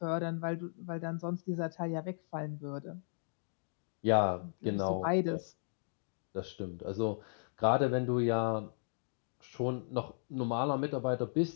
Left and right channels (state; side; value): silent; right; digital silence